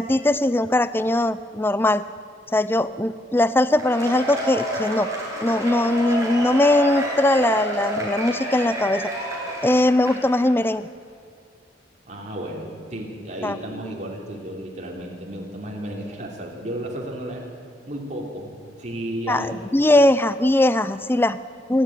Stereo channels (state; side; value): normal; both; correlation 0.75